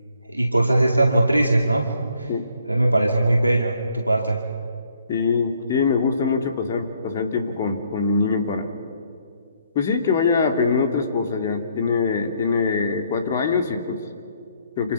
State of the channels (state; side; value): inverted; both; correlation -0.68